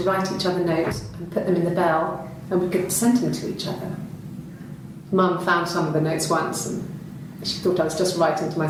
write each other notes and put them in the bell, and we could send them to each other. Mum found some of the notes once, and she thought I was just writing to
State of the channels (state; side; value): identical; both; correlation 1.00